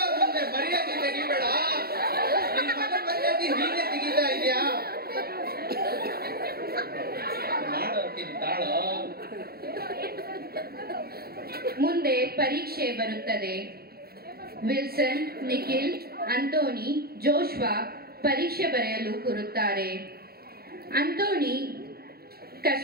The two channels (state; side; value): late; left; 0.45 ms